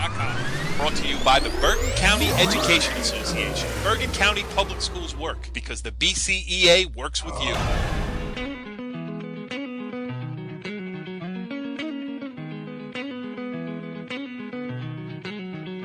Brought to you by the Bergen County Education Association. Bergen County Public Schools work because the BCEA works with you.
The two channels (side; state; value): both; identical; correlation 1.00